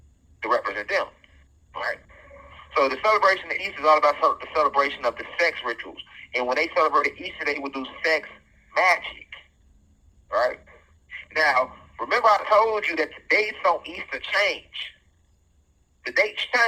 to represent them, right? So the celebration of Easter is all about the celebration of the sex rituals. And when they celebrated Easter, they would do sex magic, right? Now, remember I told you that the dates on Easter change. The dates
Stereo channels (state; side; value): identical; both; correlation 1.00